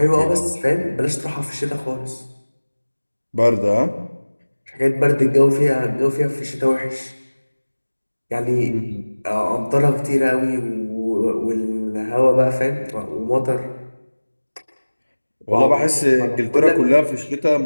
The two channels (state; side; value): inverted; both; correlation -1.00